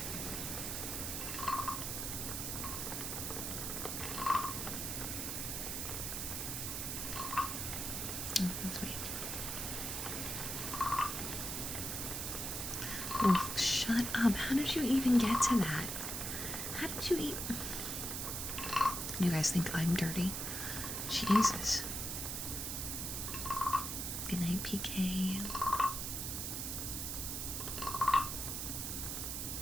Let's wait. Wolf, shut up. How did you even get to that? How did you eat? You guys think I'm dirty? Jesus. Good night, PK.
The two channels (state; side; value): noise; right; hiss, 3 dB below the sound